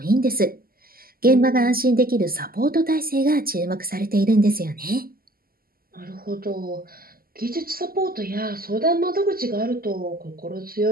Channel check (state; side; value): late; left; 0.42 ms